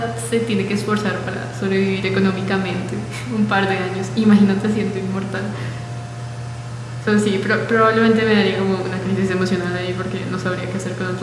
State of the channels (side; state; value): both; identical; correlation 1.00